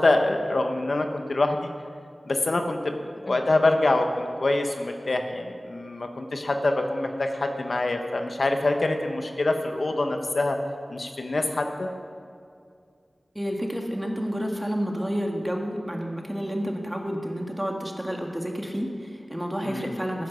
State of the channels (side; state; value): both; normal; correlation 0.97